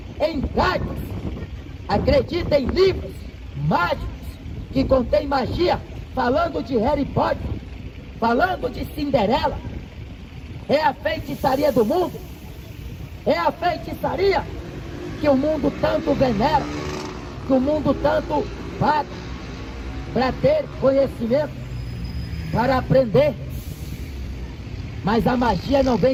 em cartas, acredita em livros mágicos que contém magia, falando de Harry Potter, falando de Cinderela. É a feitiçaria do mundo, é a feitiçaria que o mundo tanto venera, que o mundo tanto paga para ter conhecimento, para aprender. Mas a magia não vem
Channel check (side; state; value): both; identical; correlation 1.00